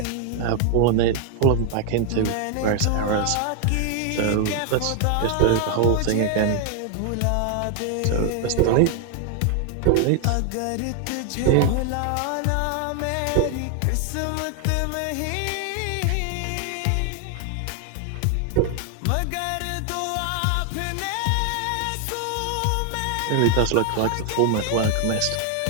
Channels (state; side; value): different; both; correlation 0.00